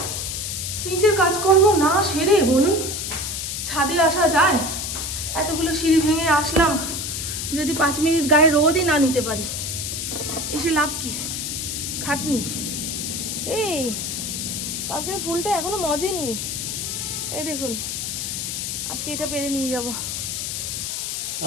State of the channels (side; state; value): left; noise; hiss, 3 dB below the sound